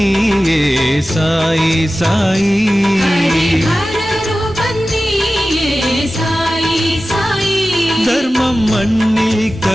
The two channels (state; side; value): normal; both; correlation 0.95